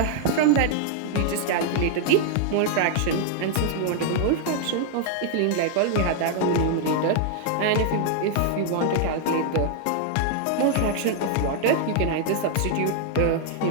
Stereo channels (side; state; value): both; different; correlation 0.00